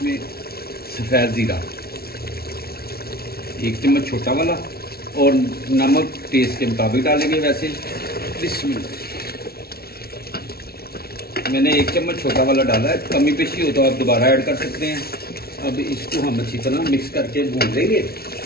सफ़ेद ज़ीरा 1 चम्मच छोटा वाला और नमक टेस्ट के मुताबिक डालेंगे वैसे। बिस्मिल्लाह। मैंने 1 चम्मच छोटा वाला डाला है, कमी पेशी हो तो आप दोबारा ऐड कर सकते हैं। अब इसको हम अच्छी तरह मिक्स करके भून लेंगे।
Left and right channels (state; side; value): late; right; 0.44 ms